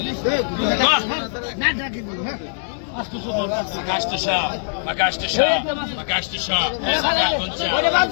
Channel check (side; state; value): right; silent; digital silence